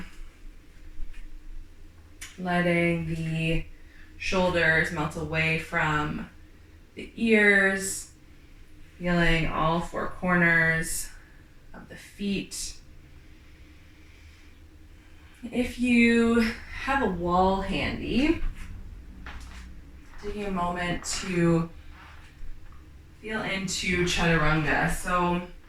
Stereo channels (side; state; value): both; identical; correlation 1.00